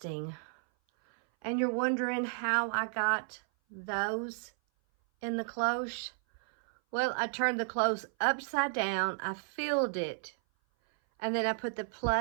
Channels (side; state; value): left; silent; 56 dB below the other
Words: And you're wondering how I got those in the cloche? Well, I turned the cloche upside down, I filled it, And then I put the